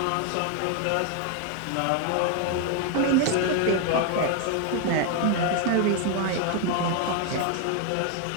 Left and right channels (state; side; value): different; both; correlation 0.01